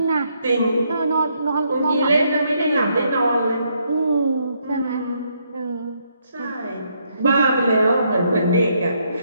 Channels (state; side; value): inverted; both; correlation -0.74